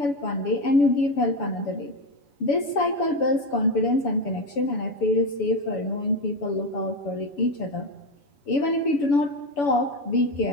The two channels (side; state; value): right; late; 7.0 ms